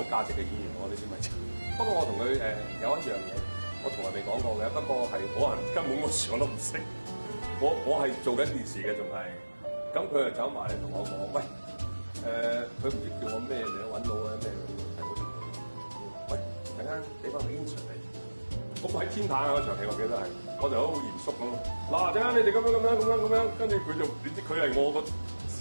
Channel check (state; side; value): inverted; both; correlation -1.00